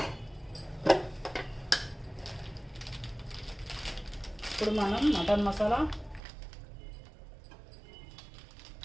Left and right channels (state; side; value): drops out; left; at 6.2 s